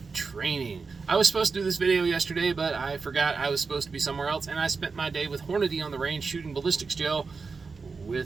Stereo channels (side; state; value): left; quieter; 4.7 dB